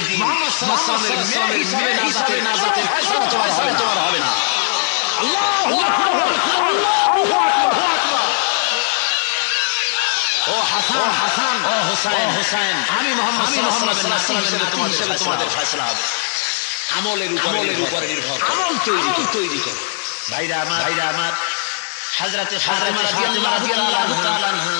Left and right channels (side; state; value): right; silent; digital silence